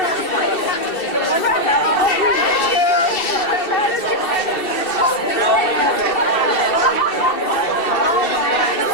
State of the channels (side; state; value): right; late; 2.7 ms